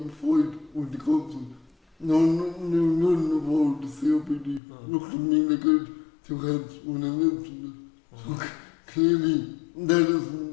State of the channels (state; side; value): drops out; right; at 4.6 s